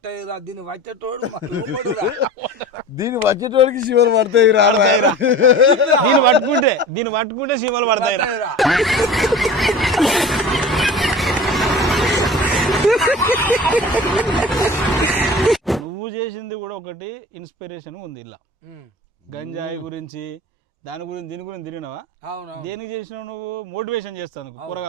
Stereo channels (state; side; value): normal; both; correlation 0.37